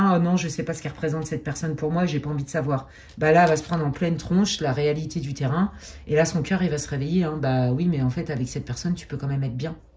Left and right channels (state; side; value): identical; both; correlation 1.00